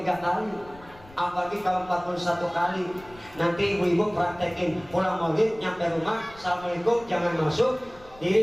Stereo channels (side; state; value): left; noise; rumble, 23 dB below the sound